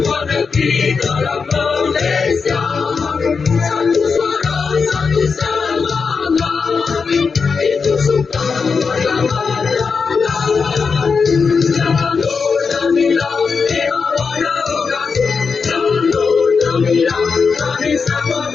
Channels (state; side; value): quieter; right; 5.3 dB